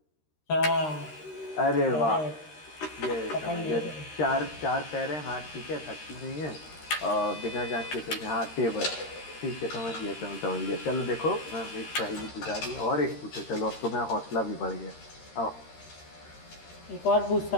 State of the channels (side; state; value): right; late; 13 ms